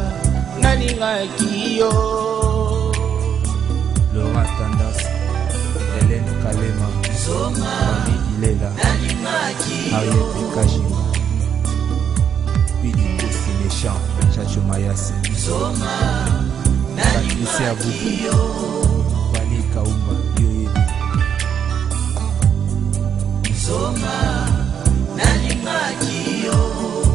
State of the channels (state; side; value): quieter; left; 8.2 dB